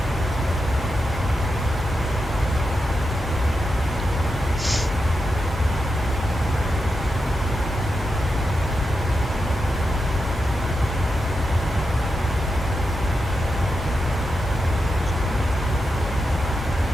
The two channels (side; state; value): both; normal; correlation 0.87